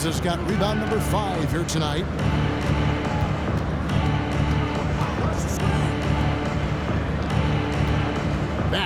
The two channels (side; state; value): both; identical; correlation 1.00